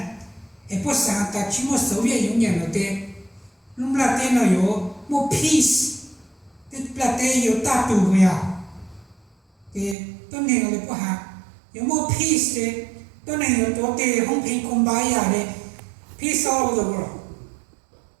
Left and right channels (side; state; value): left; drops out; at 10.0 s